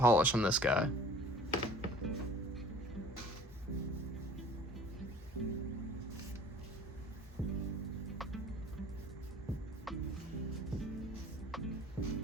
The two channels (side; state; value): both; normal; correlation 0.48